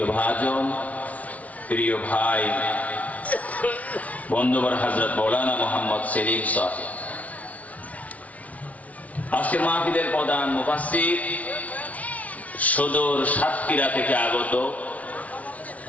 ভাজন প্রিয় ভাই বন্ধুবর হযরত মাওলানা মোহাম্মদ সেলিম সাহেব আজকের মাহফিলের প্রধান মুফাসসির সুদূর সাতক্ষীরা থেকে আগত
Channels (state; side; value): late; right; 0.069 ms